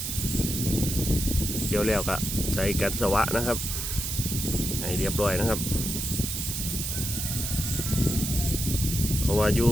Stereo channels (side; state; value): right; noise; hiss, 3 dB below the sound